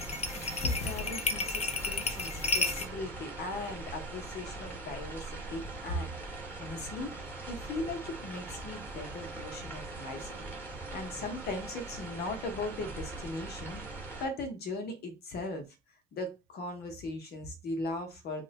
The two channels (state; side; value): normal; both; correlation 0.27